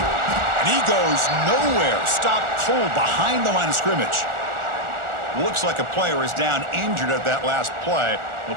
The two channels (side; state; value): left; late; 1.4 ms